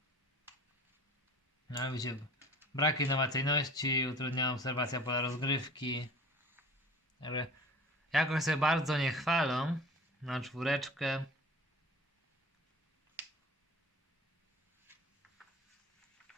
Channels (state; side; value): normal; both; correlation 0.42